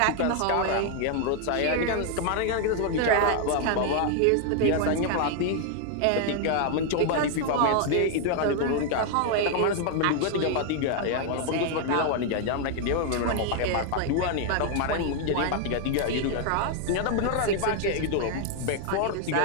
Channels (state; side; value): different; both; correlation 0.00